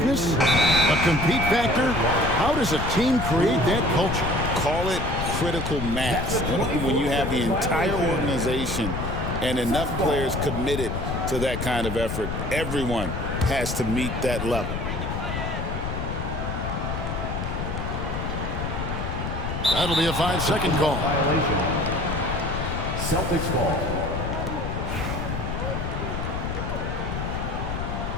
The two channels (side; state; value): left; noise; rumble, 3 dB below the sound